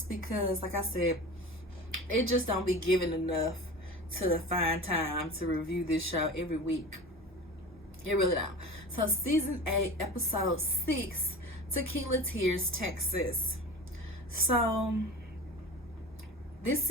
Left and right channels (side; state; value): both; normal; correlation 0.33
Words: because, like I said, it just don't be given enough to find time to review this show every week. It really don't. So season 8, episode 6, Tequila Tears, Texas. So